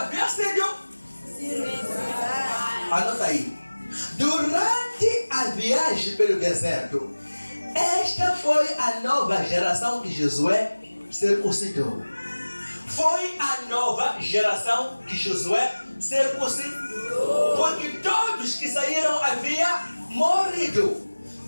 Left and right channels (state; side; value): inverted; both; correlation -1.00